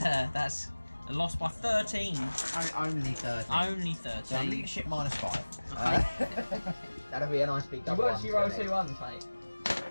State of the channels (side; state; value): both; inverted; correlation -1.00